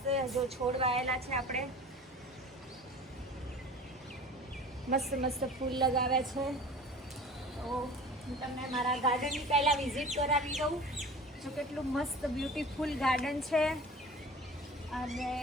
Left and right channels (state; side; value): normal; both; correlation 0.40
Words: જો છોડ વાયેલા છે. આપણે મસ્ત મસ્ત ફૂલ લગાવ્યા છે. તો હું તમને મારા ગાર્ડનની પહેલાં વિઝિટ કરાવી દઉં. જો કેટલું મસ્ત બ્યુટીફુલ ગાર્ડન છે. અને